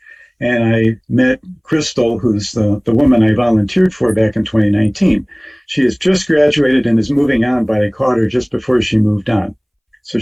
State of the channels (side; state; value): both; identical; correlation 1.00